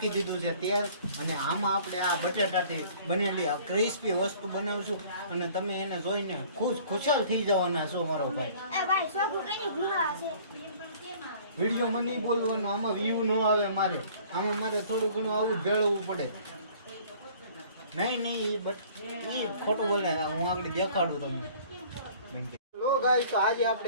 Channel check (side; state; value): both; inverted; correlation -0.52